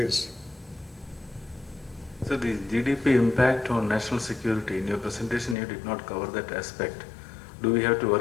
So the GDP impact on national security, in your presentation you did not cover that aspect. Do we have to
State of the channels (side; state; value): right; drops out; at 5.6 s